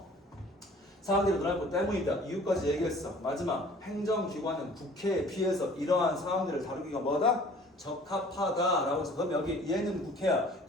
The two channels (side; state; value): both; normal; correlation 0.50